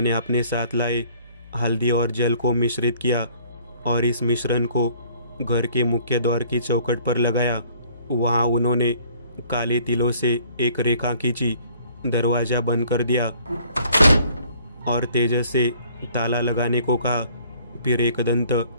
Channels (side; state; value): both; inverted; correlation -0.58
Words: अपने साथ लाए हल्दी और जल को मिश्रित किया और इस मिश्रण को घर के मुख्य द्वार की चौखट पर लगाया। वहाँ उन्होंने काले तिलों से एक रेखा खींची, दरवाजा बंद कर दिया और तेजस से ताला लगाने को कहा। फिर एकदंत